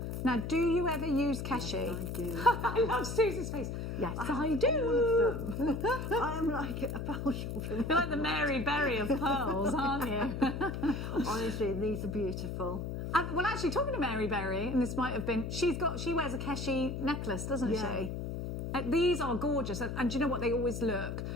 Now, do you ever use Keshi? Yes, I do. I love Susie's face. Yes, I do. All of them. I am like a pearl shop. You're like the Mary Berry of pearls, aren't you? Honestly, these are beautiful. Well, actually, talking to Mary Berry, and this might have been, she wears a Keshi necklace, doesn't she? These are gorgeous, and do you know what? They always look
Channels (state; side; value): noise; left; hum, 4 dB below the sound